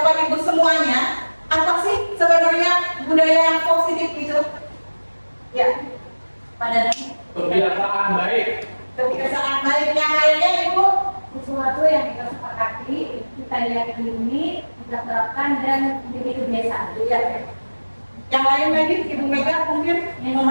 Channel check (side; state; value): both; inverted; correlation -1.00